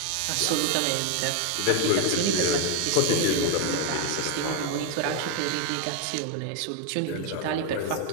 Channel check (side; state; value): both; different; correlation 0.01